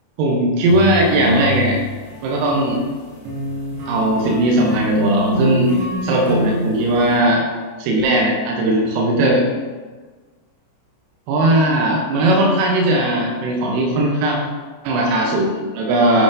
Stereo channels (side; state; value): left; late; 32 ms